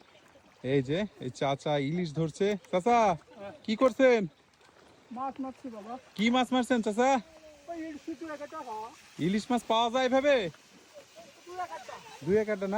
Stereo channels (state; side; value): identical; both; correlation 1.00